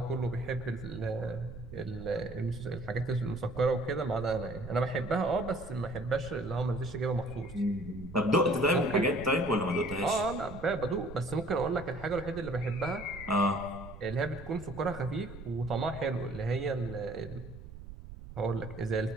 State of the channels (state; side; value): noise; right; rumble, 13 dB below the sound